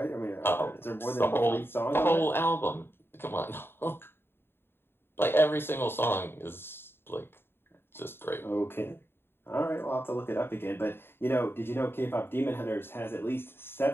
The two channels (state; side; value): late; right; 0.11 ms